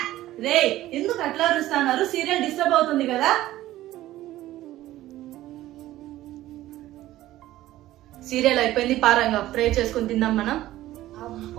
రే ఎందుకు అట్లా అరుస్తున్నారు? సీరియల్ డిస్టర్బ్ అవుతుంది కదా. సీరియల్ అయిపోయింది, పారంగా ప్రే చేసుకుని తిందాం మనం.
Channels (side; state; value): left; quieter; 15.1 dB